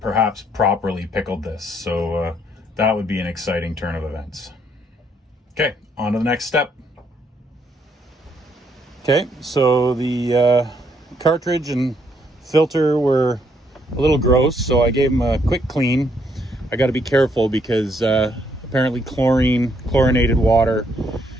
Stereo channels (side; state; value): both; normal; correlation 0.71